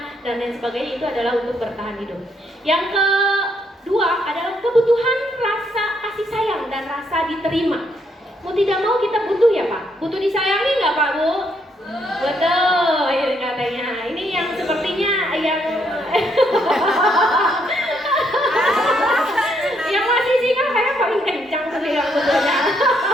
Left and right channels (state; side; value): normal; both; correlation 0.73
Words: dan lain sebagainya itu adalah untuk bertahan hidup. Yang kedua adalah kebutuhan rasa kasih sayang dan rasa diterima. Mau tidak mau kita butuh ya Pak. Butuh disayangi nggak Pak Bu? Betul, ya katanya. Ini yang sepertinya yang yang masih singa kayak paling kencang sekali yang betulnya.